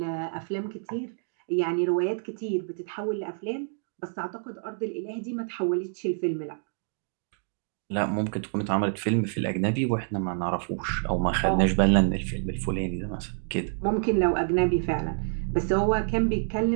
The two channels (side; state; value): left; silent; digital silence